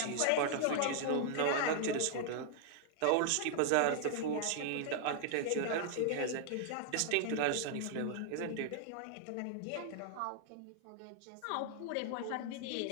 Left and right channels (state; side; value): different; both; correlation -0.01